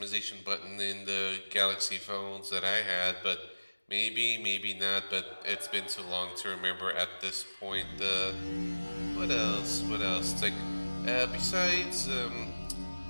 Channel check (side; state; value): both; inverted; correlation -1.00